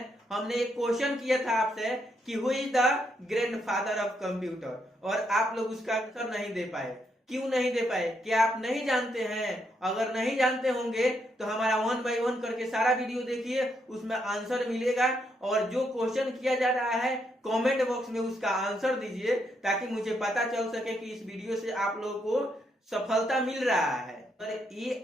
हमने एक क्वेश्चन किया था आपसे कि who is the grandfather of computer, और आप लोग उसका आंसर नहीं दे पाए। क्यों नहीं दे पाए? क्या आप नहीं जानते हैं? अगर नहीं जानते होंगे तो हमारा 1 बाय 1 करके सारा वीडियो देखिए, उसमें आंसर मिलेगा। और जो क्वेश्चन किया जा रहा है कमेंट बॉक्स में उसका आंसर दीजिए, ताकि मुझे पता चल सके कि इस वीडियो से आप लोगों को सफलता मिल रहा है। पर ये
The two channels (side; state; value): both; normal; correlation 0.77